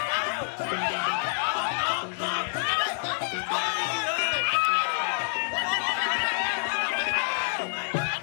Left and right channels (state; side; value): silent; right; digital silence